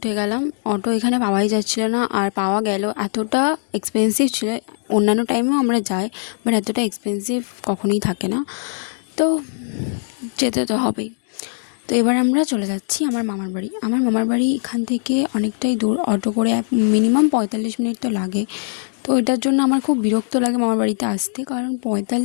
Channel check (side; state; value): right; silent; digital silence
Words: গেলাম। অটো এখানে পাওয়াই যাচ্ছিলো না, আর পাওয়া গেল এতটা এক্সপেন্সিভ ছিল। অন্যান্য টাইমেও আমরা যাই, বাট এতটা এক্সপেন্সিভ কখনোই থাকে না, তো যেতে তো হবেই। তো এবার আমরা চলে যাচ্ছি আমার মামার বাড়ি। আমার মামার বাড়ি এখান থেকে অনেকটাই দূর, অটো করে মিনিমাম 45 মিনিট তো লাগে। তো এটার জন্য আমার খুব বিরক্ত লাগে মামার বাড়িতে আসতে, কারণ